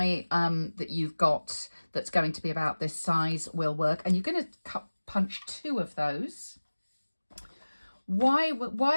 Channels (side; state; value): both; inverted; correlation -1.00